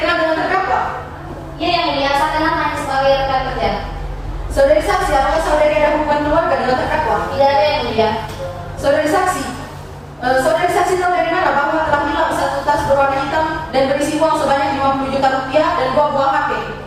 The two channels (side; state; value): both; identical; correlation 1.00